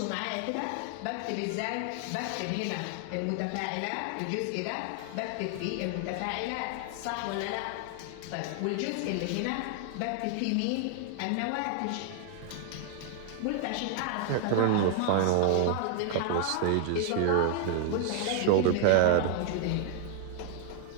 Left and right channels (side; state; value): both; different; correlation 0.00